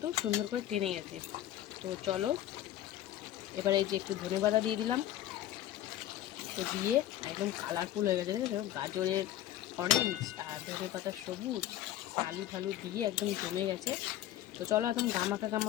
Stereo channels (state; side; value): quieter; right; 12.9 dB